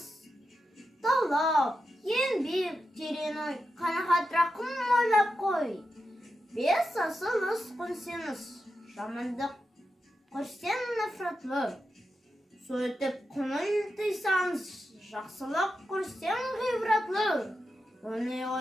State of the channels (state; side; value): normal; both; correlation 0.88